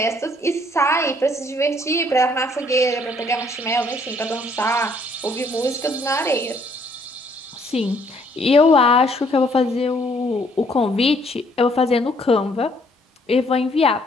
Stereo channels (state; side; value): normal; both; correlation 0.65